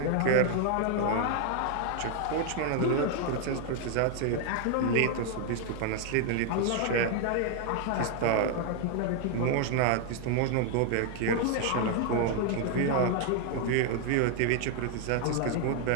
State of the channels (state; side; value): different; both; correlation 0.00